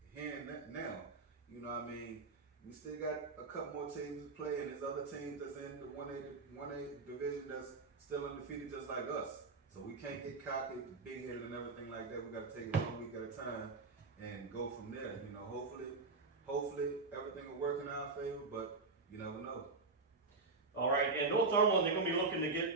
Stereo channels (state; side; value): quieter; left; 3.9 dB